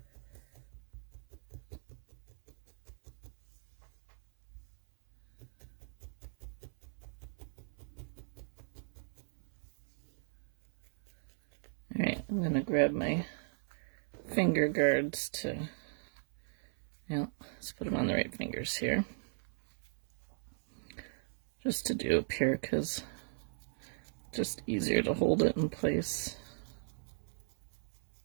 All right, I'm going to grab my finger guards to, let's put them on the right fingers here. Just to do up here because just easier to hold it in place.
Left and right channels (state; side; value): silent; left; 53 dB below the other